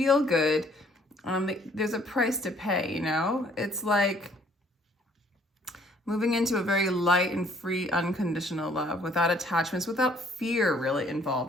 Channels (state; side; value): normal; both; correlation 0.61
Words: good, there's a price to pay, you know? It's like moving into a very light and free, unconditional love without attachments, without fear really